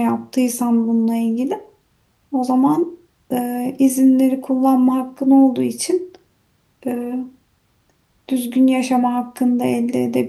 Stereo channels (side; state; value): both; identical; correlation 1.00